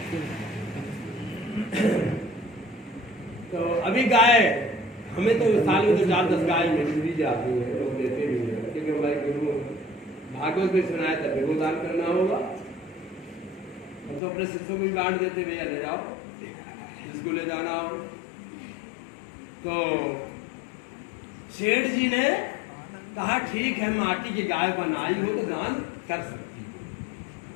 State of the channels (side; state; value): right; drops out; at 14.2 s